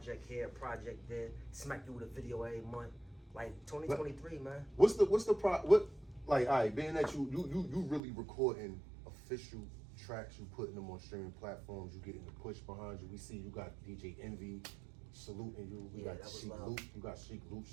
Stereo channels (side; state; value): left; drops out; at 8.0 s